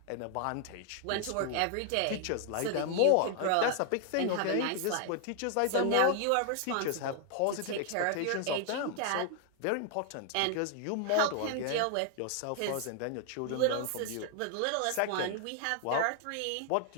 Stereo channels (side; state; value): both; different; correlation 0.00